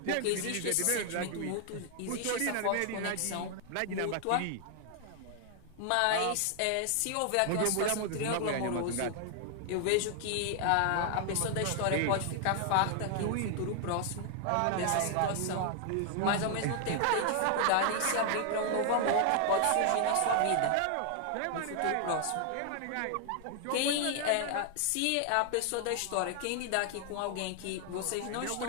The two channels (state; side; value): different; both; correlation 0.00